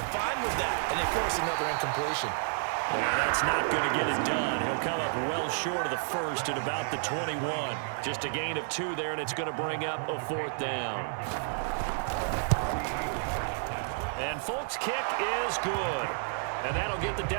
fine with that, and they force another incompletion. Now, that's not going to get it done. He'll come up well short of the first at about the 21. Just a gain of 2 there, and it's going to bring up a 4th down. And Folk's kick is good. And that'll get the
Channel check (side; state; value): left; silent; 55 dB below the other